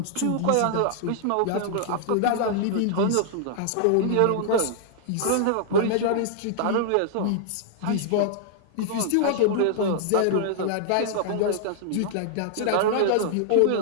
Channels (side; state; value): both; different; correlation -0.01